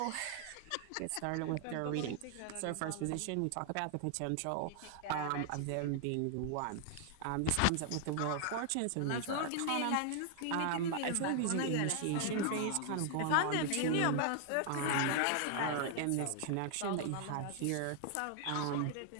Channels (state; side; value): different; both; correlation 0.00